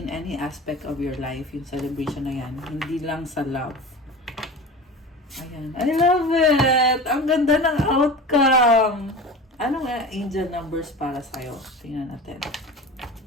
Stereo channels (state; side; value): normal; both; correlation 0.33